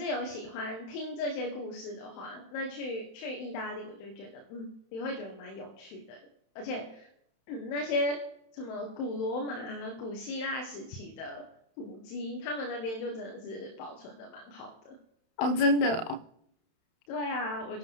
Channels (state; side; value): late; right; 31 ms